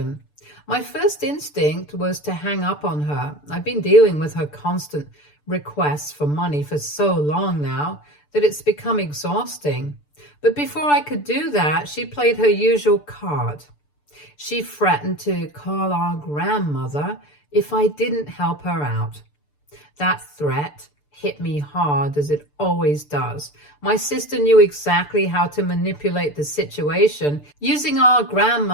My first instinct was to hang up on her. I've been dealing with her constant requests for money for so long now that it's become exhausting. But before I could do that, she played her usual card. She threatened to call our grandmother if I didn't help her out. That threat hit me hard, as it always does. My sister knew exactly how to manipulate the situation, using our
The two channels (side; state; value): right; late; 6.8 ms